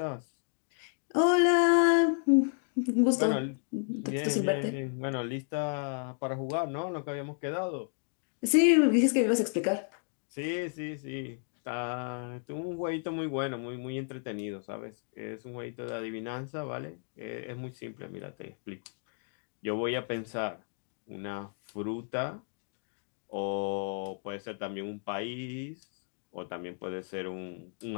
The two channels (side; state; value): right; silent; 56 dB below the other